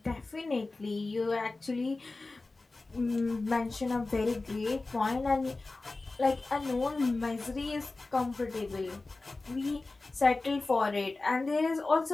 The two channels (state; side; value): quieter; right; 3.4 dB